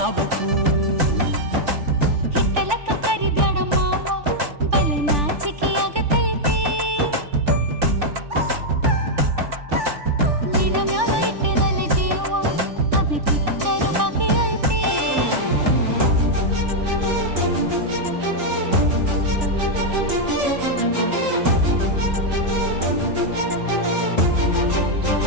ಹಿಟ್ಟಲಕ್ಕ ಕರಿಬೇಡ ಮಾವ ಬಲ ನಾಚಿಕೆ ಆಗತೈತಿ ನಿನ್ನ ಮ್ಯಾಲ ಇಟ್ಟಿರಲ್ಲ ಜೀವ ಅಭಿ ಪಿಕ್ಚರು ಬಾಕಿ ಐತಿ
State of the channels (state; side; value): late; left; 3.4 ms